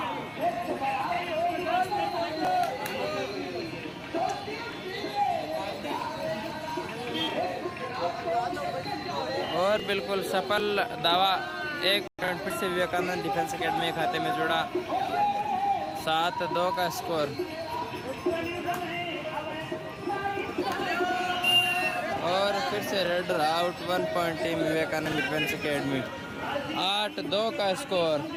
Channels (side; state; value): both; identical; correlation 1.00